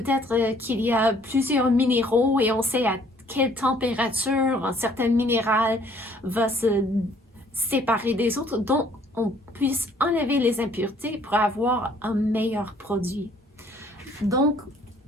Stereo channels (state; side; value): normal; both; correlation 0.60